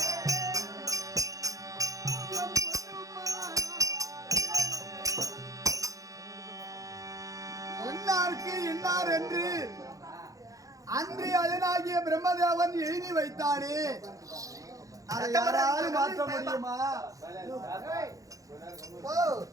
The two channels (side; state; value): left; late; 0.16 ms